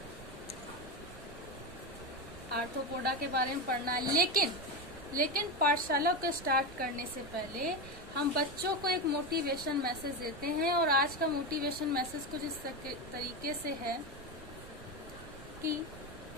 आर्थ्रोपोडा के बारे में पढ़ना है, लेकिन पाठशाला को स्टार्ट करने से पहले हम बच्चों को एक मोटिवेशन मैसेज देते हैं और आज का मोटिवेशन मैसेज कुछ इस तरीके से है कि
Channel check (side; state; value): right; noise; rumble, 15 dB below the sound